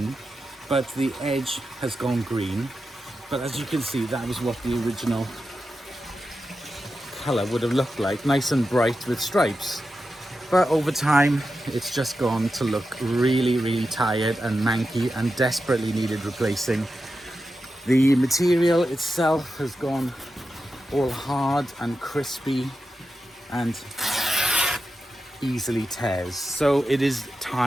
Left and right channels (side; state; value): both; normal; correlation 0.90